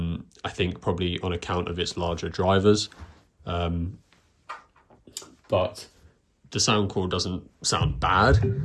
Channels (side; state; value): both; identical; correlation 1.00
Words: think probably on account of its larger drivers. But the Soundcore doesn't sound bad.